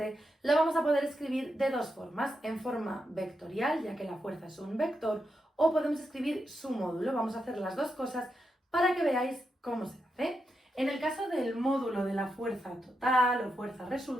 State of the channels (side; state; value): both; normal; correlation 0.85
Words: la vamos a poder escribir de dos formas, en forma vectorial, ya que la fuerza es un vector, o podemos escribir su módulo. Vamos a hacer las dos cosas para que veáis cómo se hace. En el caso del módulo de la fuerza total o fuerza